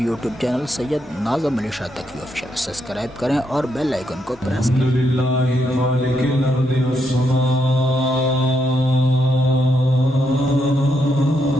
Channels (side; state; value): both; normal; correlation 0.79